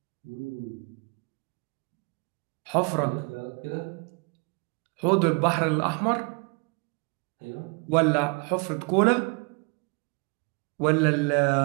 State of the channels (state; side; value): quieter; left; 32.3 dB